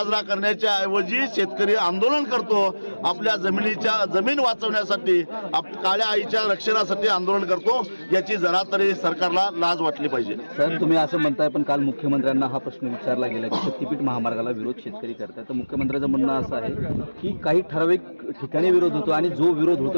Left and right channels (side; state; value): both; inverted; correlation -1.00